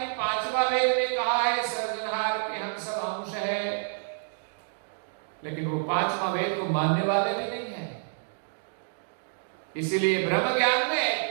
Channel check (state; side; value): silent; left; digital silence